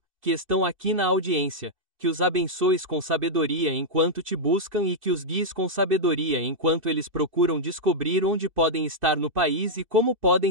que estão aqui na audiência, que os abençoes com sabedoria enquanto te buscam e que os guies com sabedoria enquanto eles procuram descobrir onde podem estar no país e como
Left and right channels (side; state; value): left; late; 2.6 ms